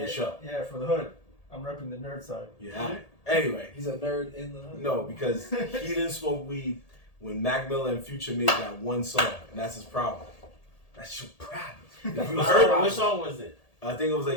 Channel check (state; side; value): late; right; 1.8 ms